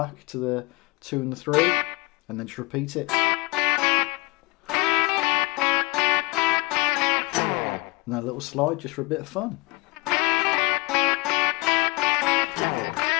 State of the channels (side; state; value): right; quieter; 23.6 dB